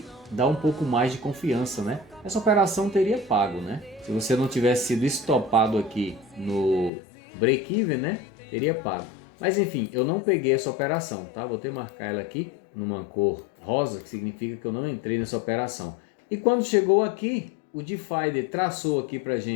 dar um pouco mais de confiança, né? Essa operação teria pago, né? Se você não tivesse sido estopado aqui no break-even, né? Teria pago. Mas enfim, eu não peguei essa operação, tá? Vou ter que marcar ela aqui numa cor rosa, que significa que eu não entrei nessa operação. E quando chegou aqui, o Divider traçou aqui pra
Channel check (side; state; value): right; drops out; at 6.9 s